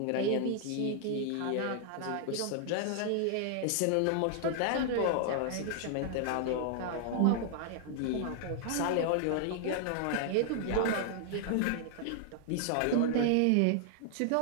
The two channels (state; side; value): different; both; correlation 0.00